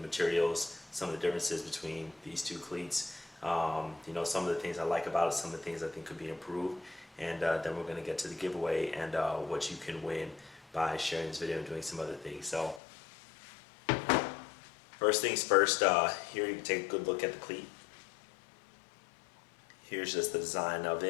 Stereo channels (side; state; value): right; drops out; at 12.8 s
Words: materials, some of the differences between these two cleats. Some of the things I like about it, some of the things I think could be improved, and then we're going to get to the giveaway and what you can win by sharing this video and doing some other things. So first things first, here you can take a good look at the cleat. Here's just the design of